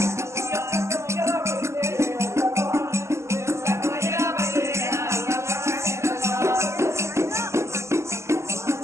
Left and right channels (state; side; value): late; left; 0.13 ms